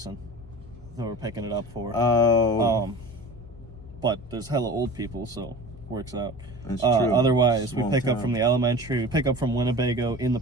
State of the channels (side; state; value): both; normal; correlation 0.36